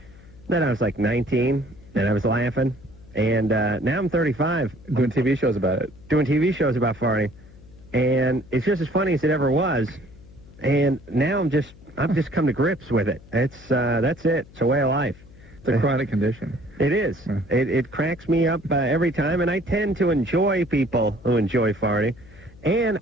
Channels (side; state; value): left; noise; hum, 22 dB below the sound